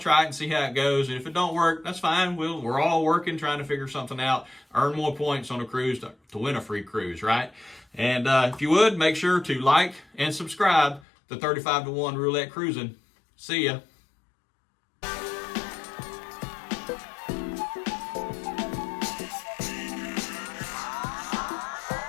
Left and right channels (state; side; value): drops out; right; at 11.0 s